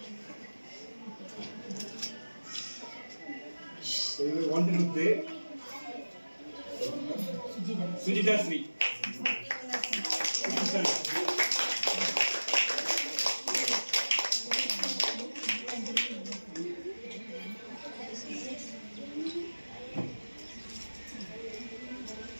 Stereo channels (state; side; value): inverted; both; correlation -1.00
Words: One to play. Sujita Sri.